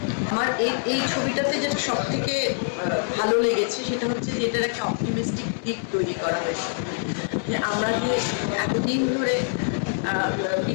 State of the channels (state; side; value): silent; right; 62 dB below the other